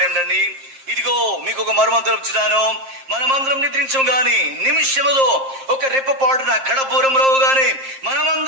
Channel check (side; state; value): left; late; 7.5 ms